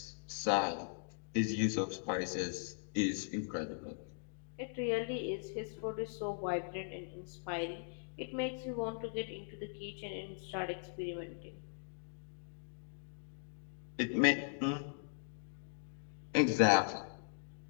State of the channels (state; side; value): silent; right; digital silence